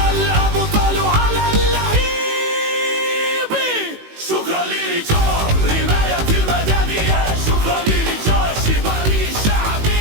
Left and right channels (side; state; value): left; late; 18 ms